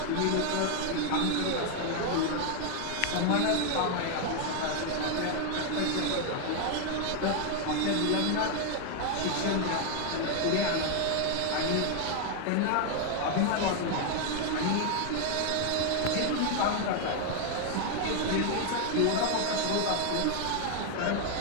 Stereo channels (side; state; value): both; different; correlation 0.00